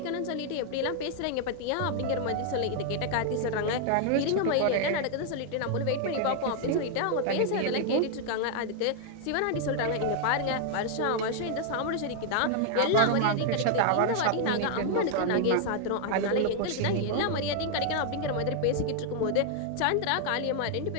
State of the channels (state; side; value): different; both; correlation 0.00